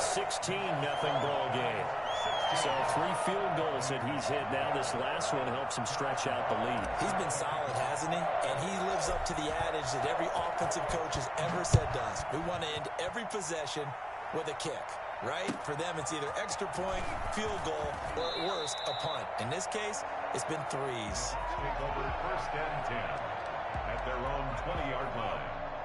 ball game. So 3 field goals that he's hit now. This last one helps him stretch out the lead. He's been solid, hasn't he? And he lives up to the adage that every offensive coach has ever said to us. We want to end every possession with a kick, right? For them, it's either extra point, field goal, or at worst, a punt. In this case, it's been 3s. Take over 1st and 10 at their own 20-yard line.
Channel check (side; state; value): both; identical; correlation 1.00